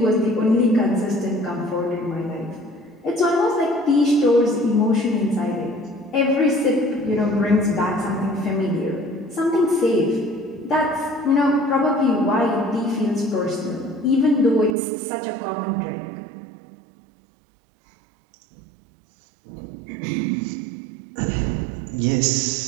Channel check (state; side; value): drops out; left; at 14.8 s